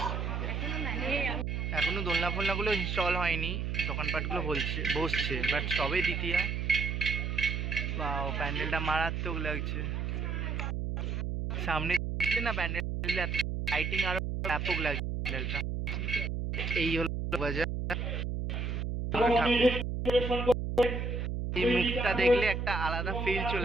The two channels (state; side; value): noise; right; hum, 2 dB below the sound